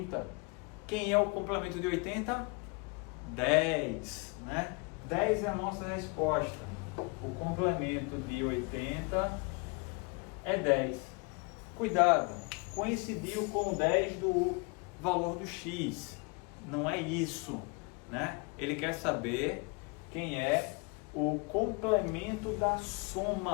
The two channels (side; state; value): right; quieter; 31.1 dB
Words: Quem é o complemento de 80? 10, né? 10 é a nossa resposta. O complemento de 80 é 10. Cuidado, coincidiu com 10 do valor do x. Não é isso, né? Ele quer saber quem é o complemento da